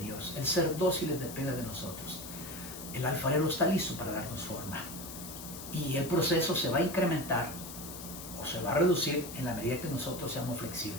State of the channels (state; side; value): noise; left; hiss, 11 dB below the sound